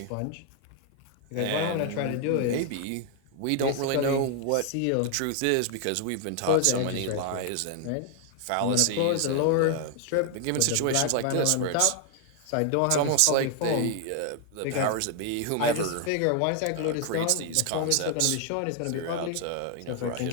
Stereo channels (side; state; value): both; different; correlation 0.00